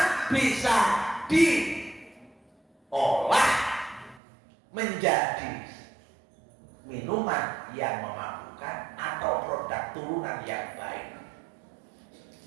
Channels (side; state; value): left; drops out; at 4.2 s